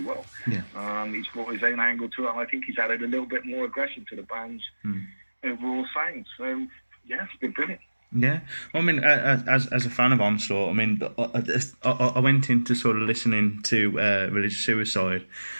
well. He's brought his own angle to it, and I think he's added a little bit more aggression to the band's overall sound, so yeah, it's been brilliant. Yeah, well, I mean, as a fan of Onslaught, I mean, I went into sort of listening to Religious Suicide,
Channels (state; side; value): inverted; both; correlation -1.00